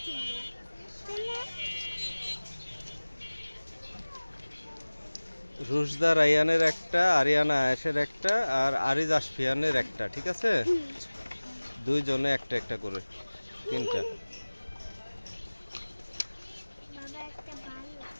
ছিল কেনা রুশদা রায়ানের একটা, আরিয়ানা আয়েশের একটা, আর আরিজ আশফিয়ানের একটা, ঠিক আছে? দুইজনে একটা একটা করে, তিনটা। বাবা একটা ভালো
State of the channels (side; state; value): both; inverted; correlation -1.00